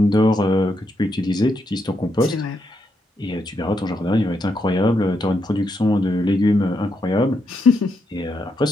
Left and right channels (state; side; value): normal; both; correlation 0.81